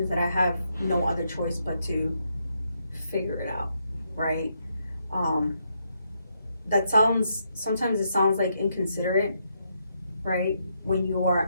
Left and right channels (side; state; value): both; inverted; correlation -0.78